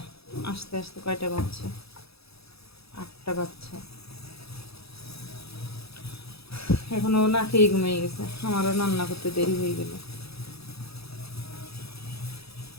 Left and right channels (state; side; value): late; right; 0.77 ms